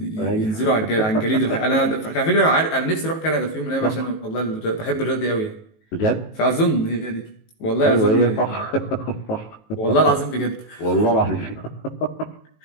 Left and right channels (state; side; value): late; right; 19 ms